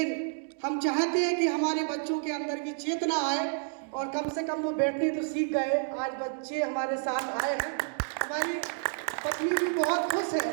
हम चाहते हैं कि हमारे बच्चों के अंदर की चेतना आए और कम से कम वो बैठने तो सीख गए। आज बच्चे हमारे साथ आए हैं, हमारी पत्नी भी बहुत खुश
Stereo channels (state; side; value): silent; left; digital silence